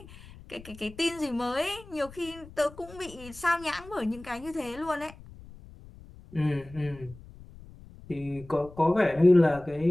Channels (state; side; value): noise; left; rumble, 19 dB below the sound